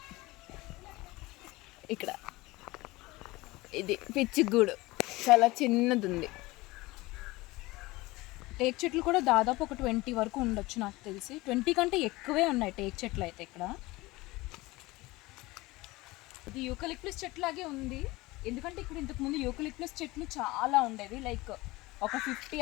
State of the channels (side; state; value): right; quieter; 20.9 dB